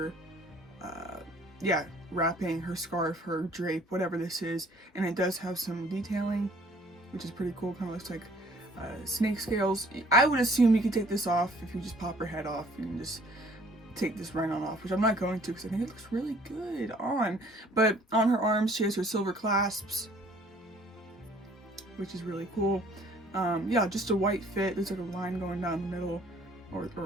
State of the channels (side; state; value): both; normal; correlation 0.57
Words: yeah, wrapping, her scarf, her drape, whatever this is, and it does have some detailing, which is pretty cool. Kind of looks like snake scales. I would assume you could take this off if you just pop her head off. You can just take this right on off, which I'm not going to because I think it looks really good on. But on her arms, she has her silver clasps, which is really cool. Yeah, just a white fit. There's like a line going down the middle,